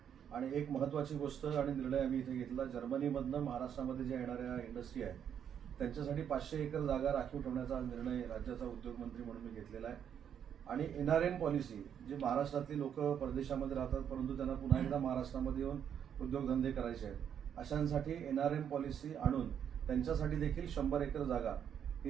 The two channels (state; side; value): quieter; left; 8.6 dB